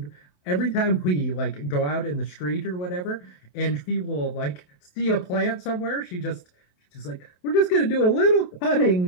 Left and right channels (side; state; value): right; late; 28 ms